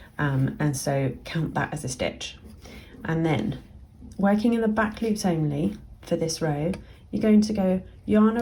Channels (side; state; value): both; identical; correlation 1.00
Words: and so count that as a stitch. And then working in the back loops only for this row, you're going to go yarn